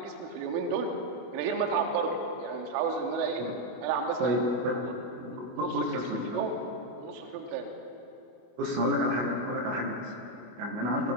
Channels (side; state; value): left; late; 24 ms